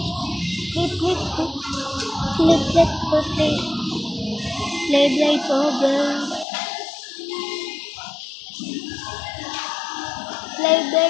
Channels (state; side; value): drops out; right; at 6.5 s